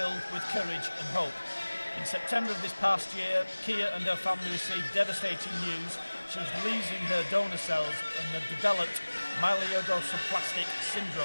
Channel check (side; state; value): both; inverted; correlation -1.00